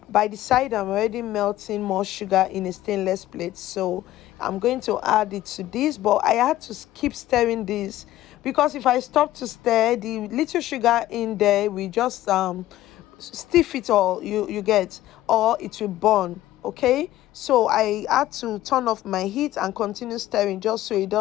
by the side I'm already melting more sugar in a stainless plate, so I'm going to add it to this, but I had to keep stirring this because if I stop to stir, the little sugar in there will just stiff it, all you get, or it will burn. Okay, so I had to turn off my heat and continue stirring just so it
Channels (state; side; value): quieter; right; 14.7 dB